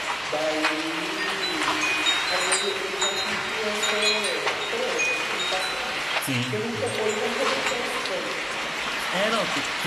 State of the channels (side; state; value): both; identical; correlation 1.00